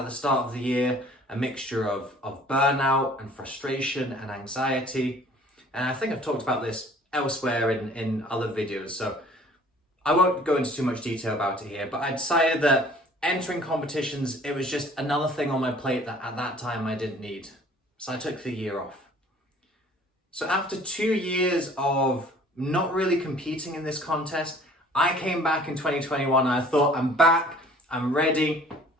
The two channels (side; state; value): both; normal; correlation 0.53